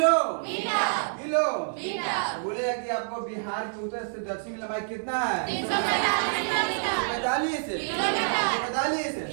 किलो। बोलेगा कि आपको बिहार के उत्तर से दक्षिण लंबाई कितना है? 345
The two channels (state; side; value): silent; left; digital silence